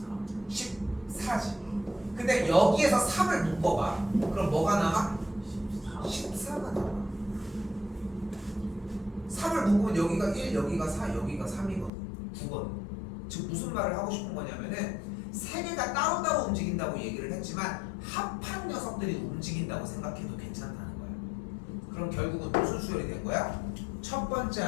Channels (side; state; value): right; drops out; at 11.9 s